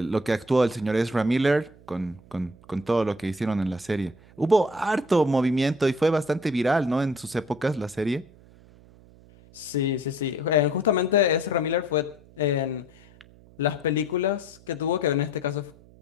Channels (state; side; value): noise; right; hum, 25 dB below the sound